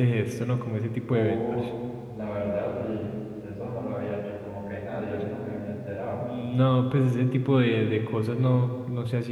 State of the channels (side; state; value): both; identical; correlation 1.00